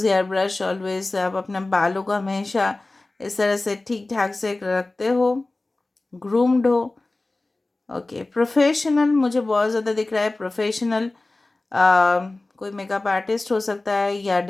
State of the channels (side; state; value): right; quieter; 3.0 dB